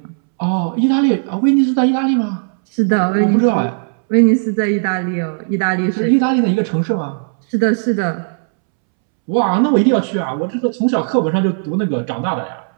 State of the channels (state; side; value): silent; left; 69 dB below the other